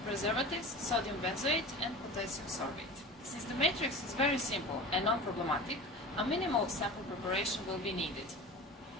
preservatives, sodium benzoate and potassium sorbate. Since the matrix is very simple and non-problematic, a minimal sample preparation will be needed.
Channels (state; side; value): normal; both; correlation 0.34